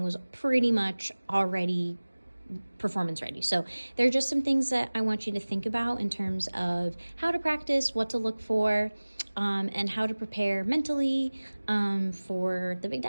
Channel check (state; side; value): inverted; both; correlation -1.00